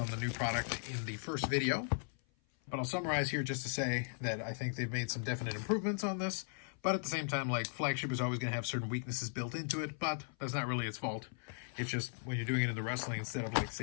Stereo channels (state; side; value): silent; right; 53 dB below the other